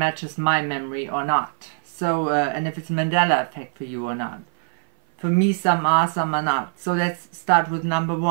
my memory or not. So and if it's a Mandela effect for you or not. For me, some are, some are not. So let's start with number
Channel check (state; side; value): silent; left; 58 dB below the other